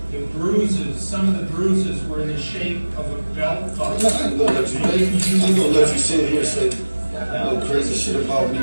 The bruises, some of the bruises were in the shape of a belt buckle. I'm gonna let you sit here and say no crazy shit about me,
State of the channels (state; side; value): inverted; both; correlation -1.00